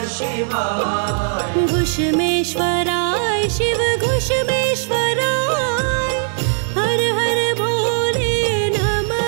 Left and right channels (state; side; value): silent; left; digital silence